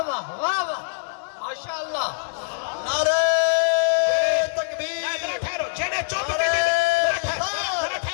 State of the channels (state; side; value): silent; right; digital silence